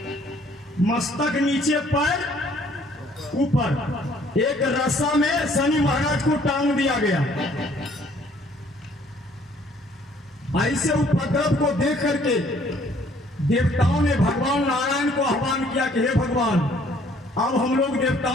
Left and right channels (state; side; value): normal; both; correlation 0.61